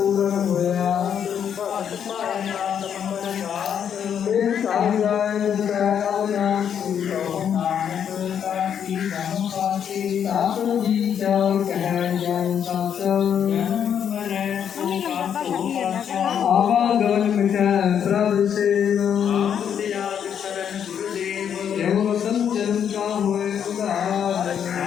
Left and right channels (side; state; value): right; quieter; 8.5 dB